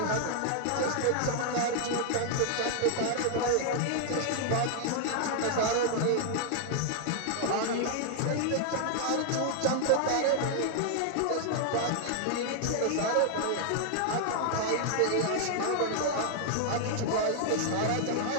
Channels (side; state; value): both; different; correlation -0.01